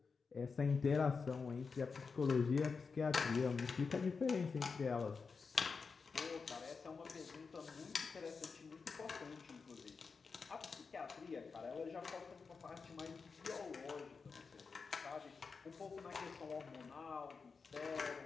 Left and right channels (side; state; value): right; quieter; 5.0 dB